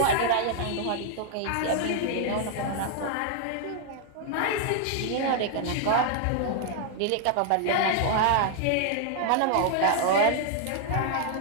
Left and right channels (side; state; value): both; different; correlation 0.00